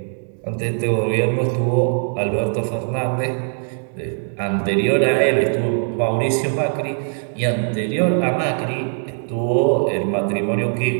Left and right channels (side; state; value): left; silent; digital silence